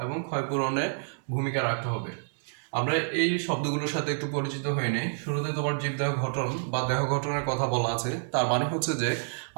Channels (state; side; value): silent; left; 59 dB below the other